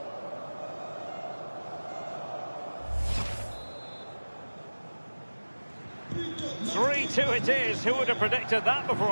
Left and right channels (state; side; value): inverted; both; correlation -1.00